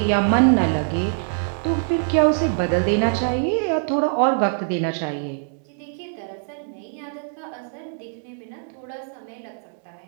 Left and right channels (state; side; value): silent; left; digital silence